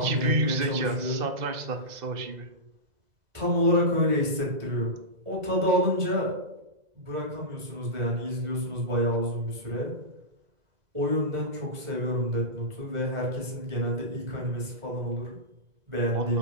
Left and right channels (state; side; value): late; left; 2.0 ms